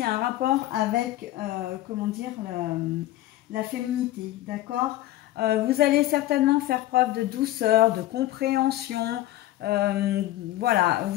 a un rapport avec, la féminité, d'accord. Vous allez certainement faire preuve de douceur, de compréhension. Voilà,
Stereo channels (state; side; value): quieter; right; 15.2 dB